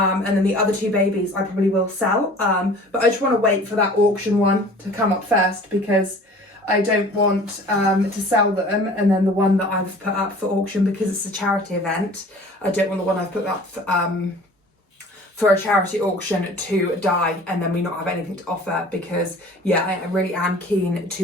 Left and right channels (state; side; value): normal; both; correlation 0.46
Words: then the other two babies I probably will sell. But I just want to wait for that auction one to come up first because I don't want to sell them. And then the one that I've put up for auction, because it's a charity event, I don't want the one I've put up for a charity auction to die and then we not have anything to offer, because yeah, I really am keen